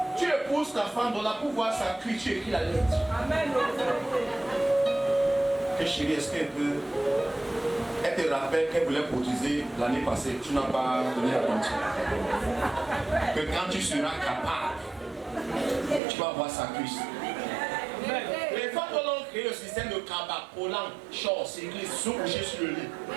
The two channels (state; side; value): drops out; left; at 16.0 s